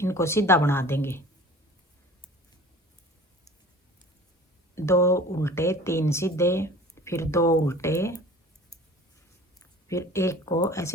सीधा बना देंगे। 2 उल्टे, 3 सीधे, फिर 2 उल्टे, फिर एक को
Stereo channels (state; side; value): normal; both; correlation 0.43